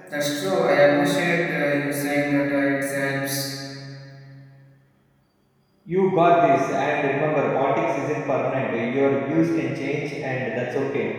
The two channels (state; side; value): identical; both; correlation 1.00